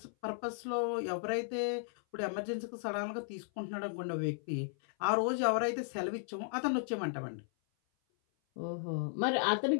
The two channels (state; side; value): silent; right; 54 dB below the other